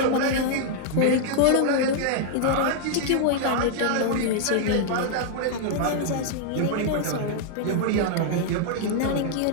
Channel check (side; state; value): both; different; correlation -0.01